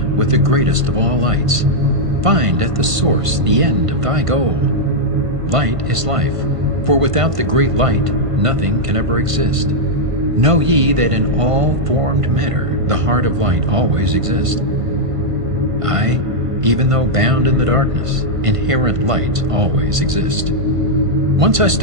with the greatest of all lights. Find at the source the end of thy goal. Light is life, for without the great light nothing can ever exist. Know ye that in all formed matter the heart of light always exists. Aye, even though bound in the darkness, inherent light always exists. Once I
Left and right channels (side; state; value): left; late; 1.5 ms